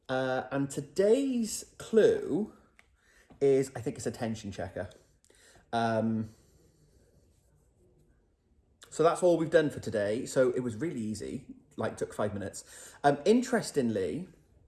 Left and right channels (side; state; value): both; identical; correlation 1.00